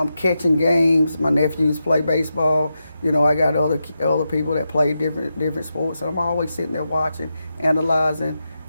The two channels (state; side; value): inverted; both; correlation -0.88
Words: catching games. My nephews play baseball. I got other people that play different sports, and I'm always sitting there watching, analyzing,